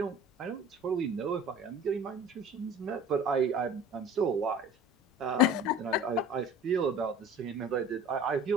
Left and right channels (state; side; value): normal; both; correlation 0.42